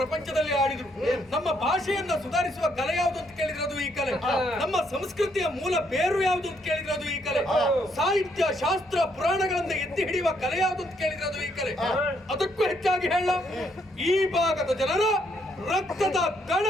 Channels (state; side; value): normal; both; correlation 0.72